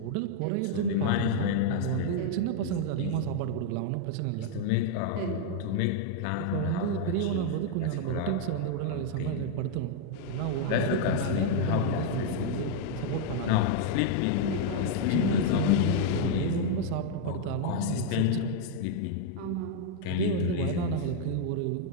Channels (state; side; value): different; both; correlation 0.00